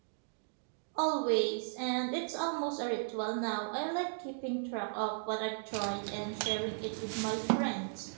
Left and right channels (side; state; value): left; silent; digital silence